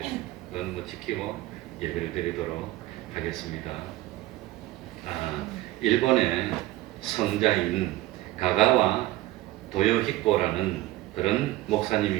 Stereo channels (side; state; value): left; quieter; 16.7 dB